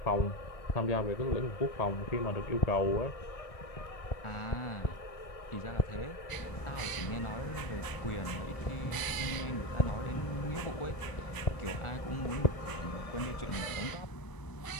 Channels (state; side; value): late; right; 1.0 ms